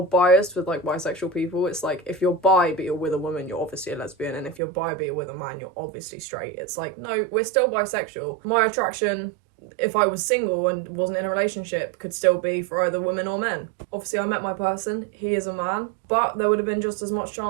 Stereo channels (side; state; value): left; drops out; at 4.6 s